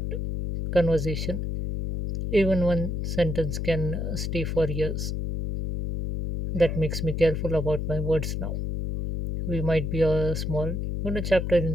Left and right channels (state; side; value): noise; left; hum, 2 dB below the sound